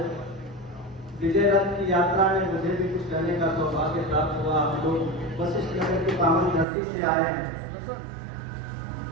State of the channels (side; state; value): left; drops out; at 6.7 s